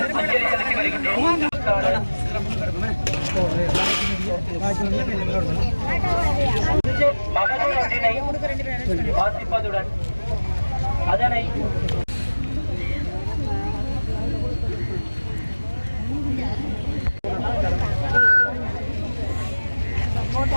அஞ்சலி செலுத்தி வருகின்றோம். மகளிர் ஒன்றினை வாசிப்பதுடன் அதனை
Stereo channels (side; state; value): both; inverted; correlation -1.00